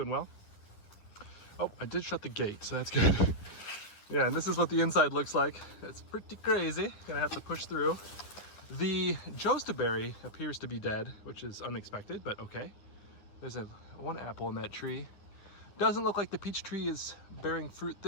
well. Oh, I did shut the gate, so that's good. Yeah, and this is what the inside looks like. It's pretty crazy. Gonna have to push through. The jostaberry appears to be dead, which is unexpected, but okay. There's one apple in that tree. Doesn't look like the peach tree is bearing fruit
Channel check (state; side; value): late; right; 10 ms